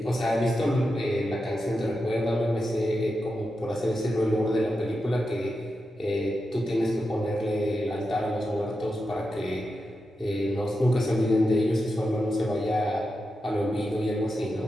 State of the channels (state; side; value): normal; both; correlation 0.89